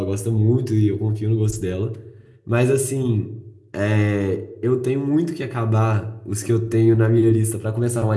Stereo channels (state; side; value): identical; both; correlation 1.00